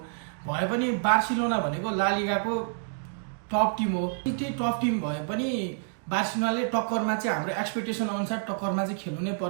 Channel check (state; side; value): silent; left; digital silence